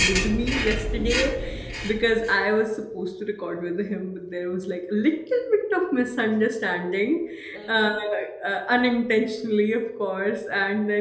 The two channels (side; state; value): both; identical; correlation 1.00